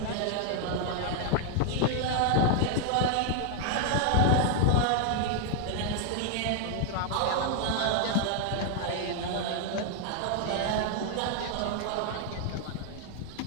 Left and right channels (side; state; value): both; different; correlation 0.00